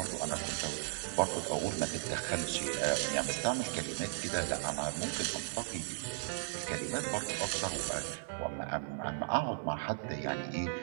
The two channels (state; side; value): silent; left; 54 dB below the other